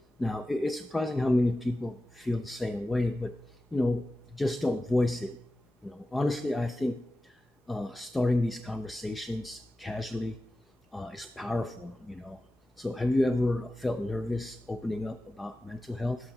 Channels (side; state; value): both; normal; correlation 0.94